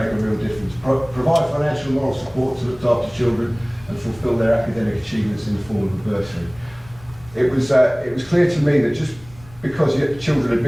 a real difference. Provide financial and moral support to look after children and fulfil their academic achievements in the form of a bursary. It was clear to me that just because children had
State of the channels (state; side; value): noise; left; rumble, 22 dB below the sound